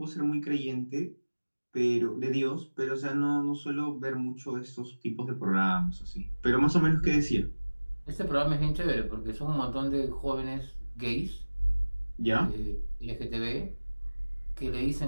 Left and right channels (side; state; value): both; inverted; correlation -1.00